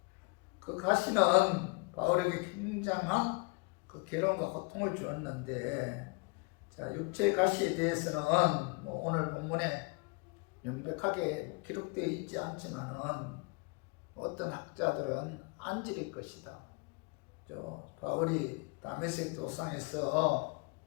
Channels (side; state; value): right; quieter; 30.5 dB